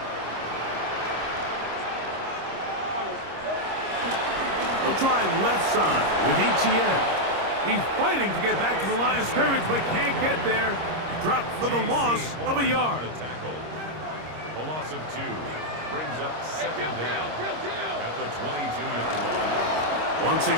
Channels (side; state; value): left; late; 26 ms